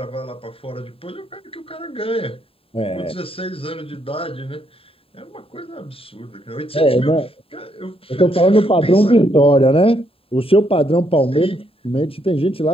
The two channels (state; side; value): late; right; 0.27 ms